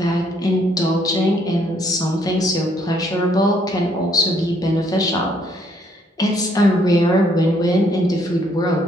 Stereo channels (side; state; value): both; normal; correlation 0.68